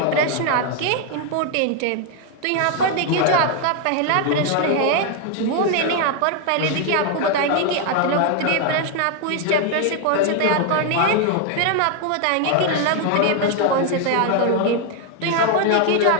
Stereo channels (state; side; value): different; both; correlation 0.01